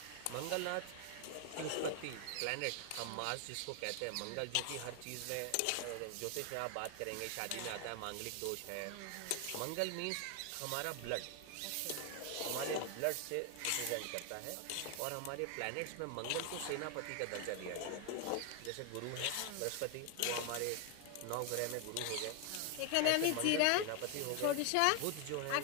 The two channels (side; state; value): both; different; correlation 0.01